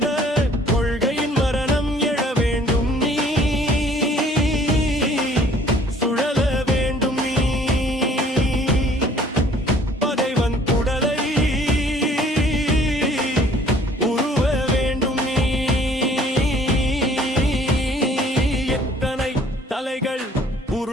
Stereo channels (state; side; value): normal; both; correlation 0.56